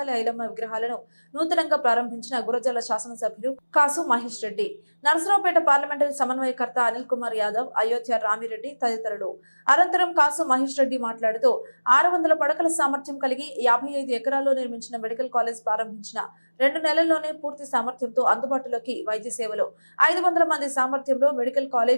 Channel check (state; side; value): inverted; both; correlation -1.00